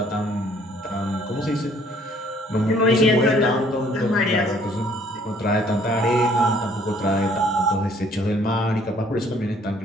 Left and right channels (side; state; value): both; normal; correlation 0.60